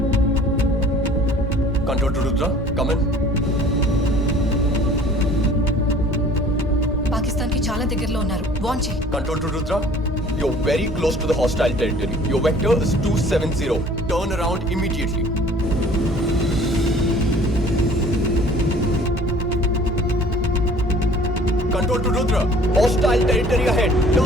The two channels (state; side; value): normal; both; correlation 0.51